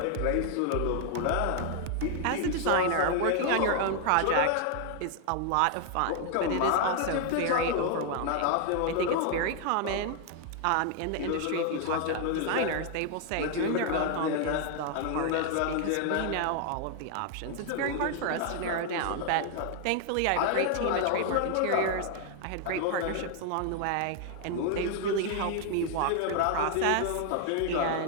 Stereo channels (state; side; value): different; both; correlation 0.00